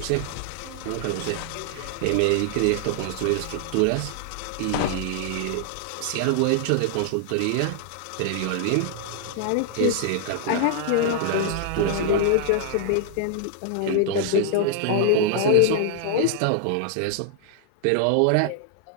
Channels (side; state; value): both; different; correlation 0.00